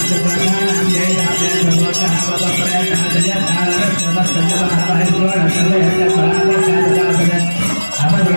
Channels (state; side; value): inverted; both; correlation -1.00